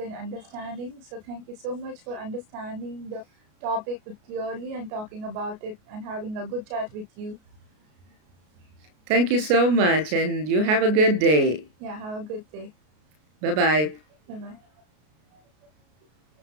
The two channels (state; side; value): late; left; 33 ms